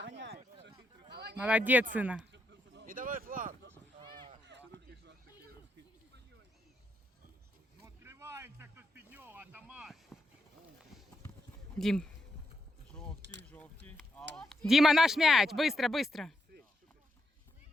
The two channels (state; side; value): normal; both; correlation 0.81